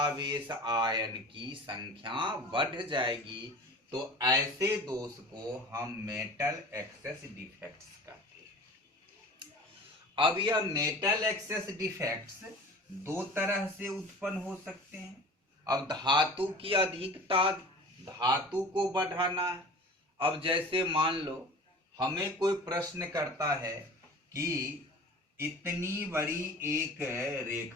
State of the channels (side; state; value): both; normal; correlation 0.39